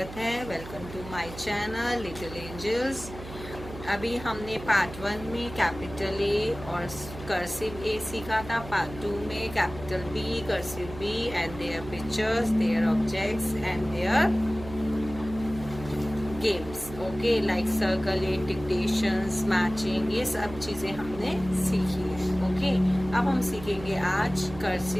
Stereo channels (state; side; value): noise; right; hum, 13 dB below the sound